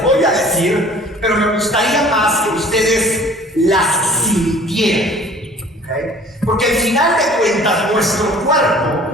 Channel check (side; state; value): both; normal; correlation 0.49